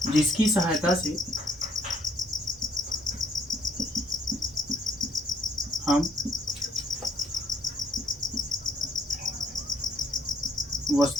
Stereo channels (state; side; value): normal; both; correlation 0.66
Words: जिसकी सहायता से हम